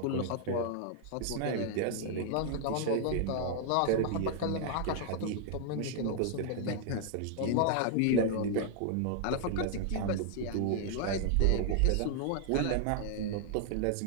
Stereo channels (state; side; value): different; both; correlation -0.01